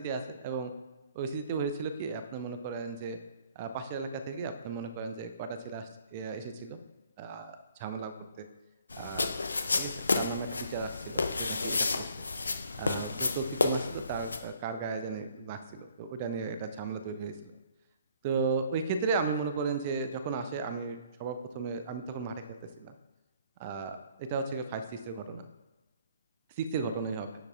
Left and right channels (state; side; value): inverted; both; correlation -0.60